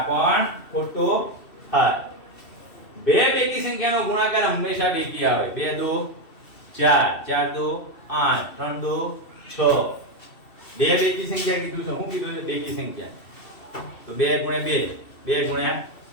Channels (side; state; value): right; late; 2.7 ms